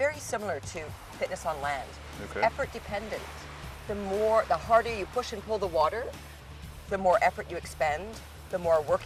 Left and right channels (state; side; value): identical; both; correlation 1.00